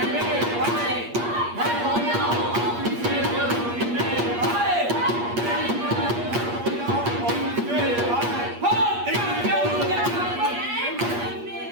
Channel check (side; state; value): left; late; 8.5 ms